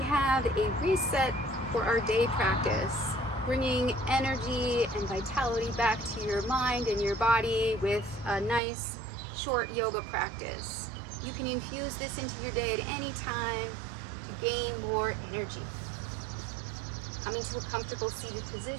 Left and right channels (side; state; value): left; drops out; at 8.6 s